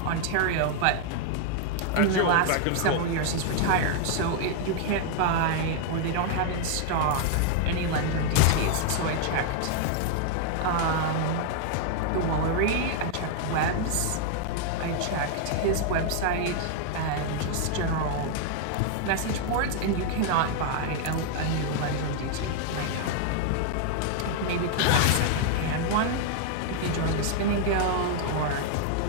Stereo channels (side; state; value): both; different; correlation 0.00